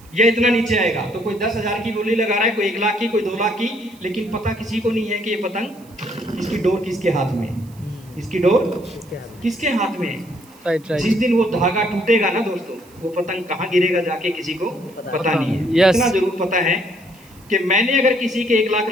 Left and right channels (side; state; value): right; noise; hiss, 27 dB below the sound